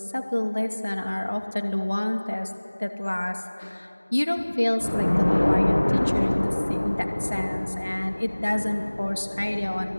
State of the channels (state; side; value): inverted; both; correlation -1.00